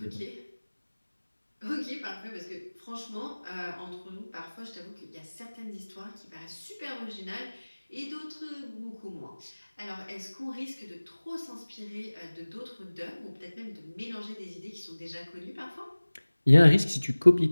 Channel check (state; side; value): inverted; both; correlation -1.00